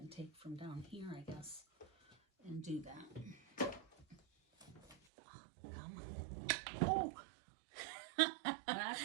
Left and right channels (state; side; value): drops out; left; at 5.0 s